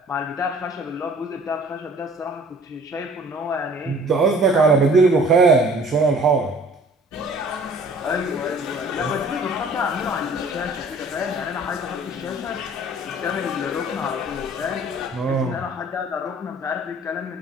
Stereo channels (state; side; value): normal; both; correlation 0.51